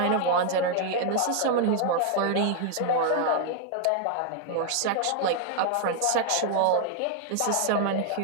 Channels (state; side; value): different; both; correlation 0.00